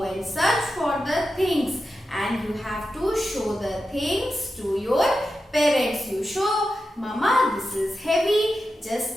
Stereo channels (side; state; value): both; normal; correlation 0.90